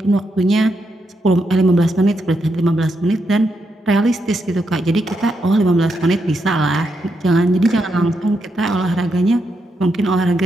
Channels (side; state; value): both; normal; correlation 0.82